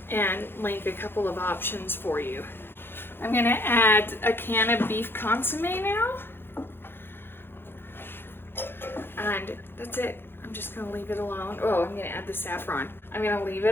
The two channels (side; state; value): right; late; 0.10 ms